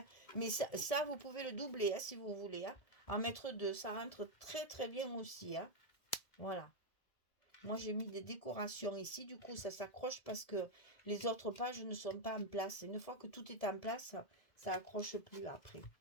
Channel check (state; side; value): late; right; 1.7 ms